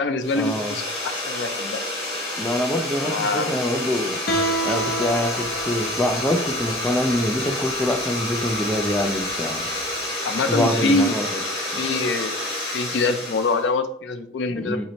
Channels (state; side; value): normal; both; correlation 0.40